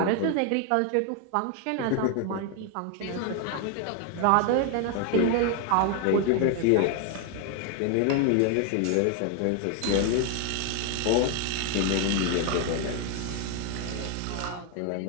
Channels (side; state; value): both; different; correlation 0.01